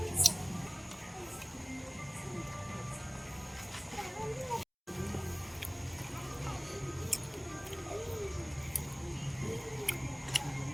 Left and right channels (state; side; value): identical; both; correlation 1.00